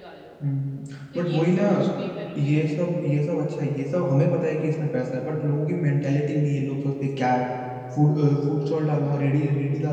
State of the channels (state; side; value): identical; both; correlation 1.00